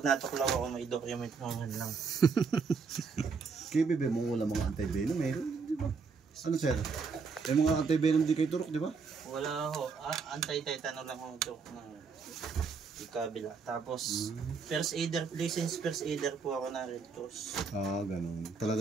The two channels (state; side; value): quieter; left; 5.2 dB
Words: natuklaw ako, may document mo man lang. Kaya bebe mo wala mga anti-venom meron, di ba? Ano sir? Yung mga anti-venom di kayo turok, di ba? Wala ho. Anti-tetano lang ho ito ng ikabila. Tapos, first aider, licensed first aider po ako na Red Cross. Ganun.